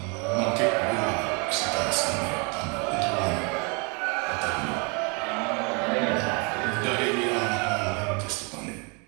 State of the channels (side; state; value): left; quieter; 33.3 dB